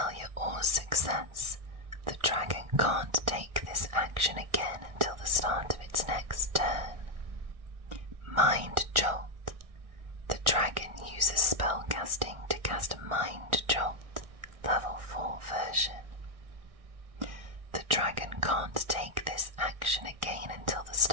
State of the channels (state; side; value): late; left; 1.6 ms